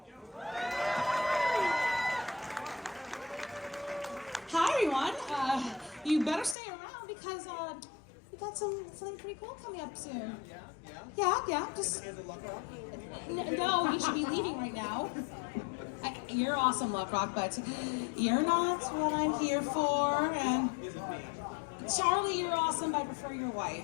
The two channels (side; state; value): right; drops out; at 6.6 s